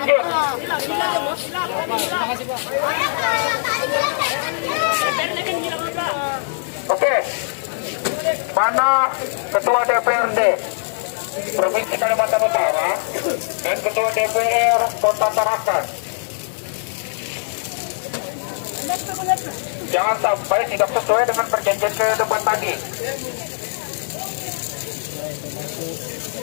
Oke, mana ketua DPRD Provinsi Kalimantan Utara dan ketua DPR Kota Tarakan? Jangan sampai tidak sesuai dengan perjanjian ke depan tadi.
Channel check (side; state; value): right; silent; digital silence